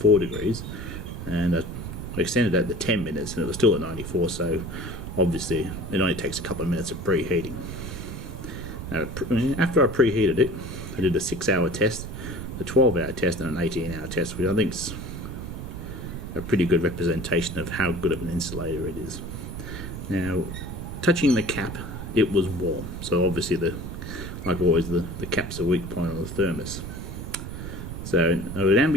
degrees, and I extended that to 10 minutes, and it was still at 94, so obviously it only takes a couple of minutes of preheating. Now, after I preheated it, I did a 6-hour test, a 12-hour test, and an 18-hour test, which I think is a pretty good representation of how good of an insulator it is. Now, touching the cap, it was warm, so obviously, like always, the cap's a weak point on the thermos. So, at an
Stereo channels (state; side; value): noise; right; rumble, 7 dB below the sound